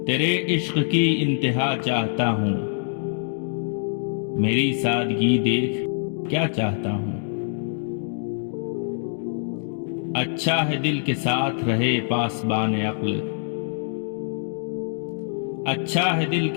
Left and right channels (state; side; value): silent; right; digital silence